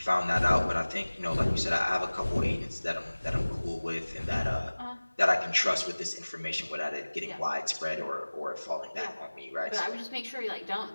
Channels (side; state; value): both; inverted; correlation -1.00